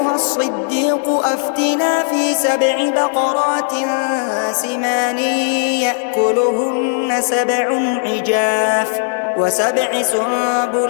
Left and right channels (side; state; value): right; silent; digital silence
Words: الصديق أفتنا في 7 بقرات سمان يأكلهن 7 عجاف و7